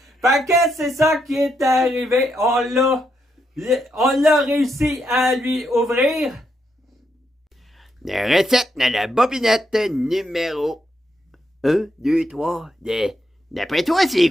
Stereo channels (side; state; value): both; normal; correlation 0.80